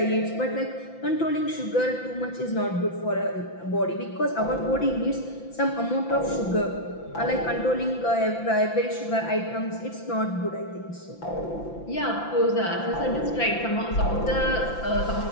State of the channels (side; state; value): right; late; 5.9 ms